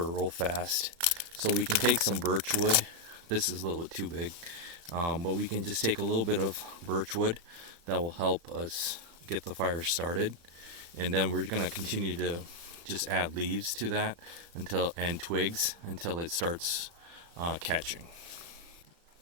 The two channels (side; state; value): left; late; 35 ms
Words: real fast. So we can take some birch wood. This is a little bit too big, but we can just take a little bit of birch wood that will help us get the fire started, and then we're going to continue to just add leaves to that and twigs until it starts catching.